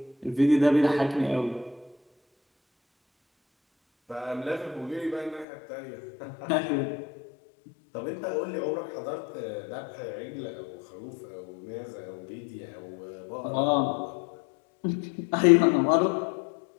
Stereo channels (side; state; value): right; drops out; at 5.5 s